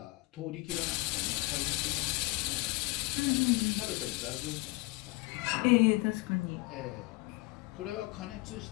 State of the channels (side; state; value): right; quieter; 23.6 dB